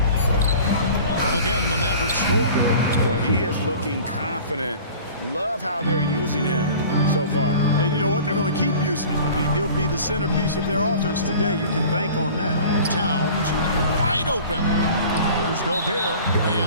Again, the Mavericks score. Boy, he is looking confident. Love how they're using him so far. And you know what? They're going to keep using him. I mean, he'll be the centerpiece of their offense today. You can bank on that. Towns wide open. Here's Gobert,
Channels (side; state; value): both; inverted; correlation -0.43